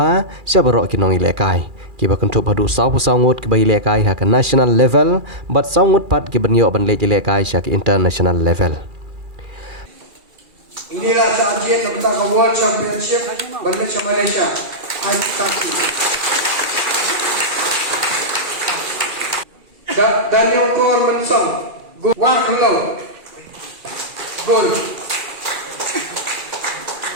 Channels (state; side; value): late; left; 2.4 ms